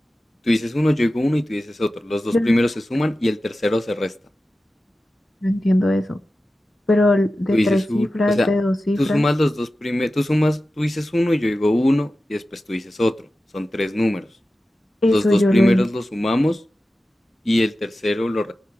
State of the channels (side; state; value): both; normal; correlation 0.94